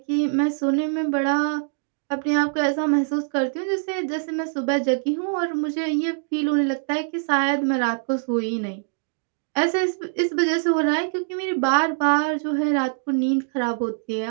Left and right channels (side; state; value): left; silent; digital silence